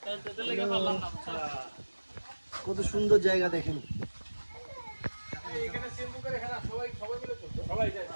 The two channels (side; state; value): both; inverted; correlation -1.00